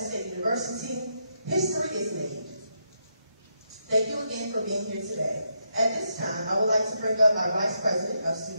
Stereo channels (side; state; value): both; inverted; correlation -0.80